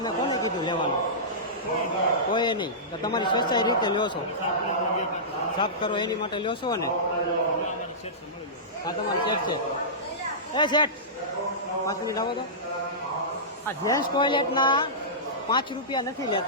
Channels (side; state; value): both; normal; correlation -0.18